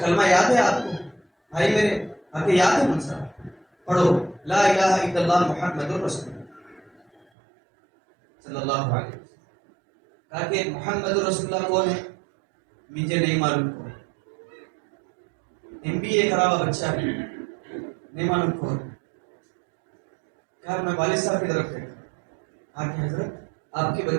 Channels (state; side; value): drops out; left; at 7.2 s